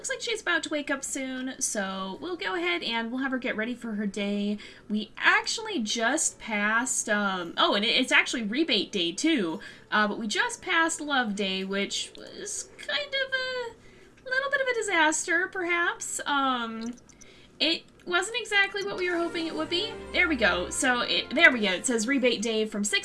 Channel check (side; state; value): both; identical; correlation 1.00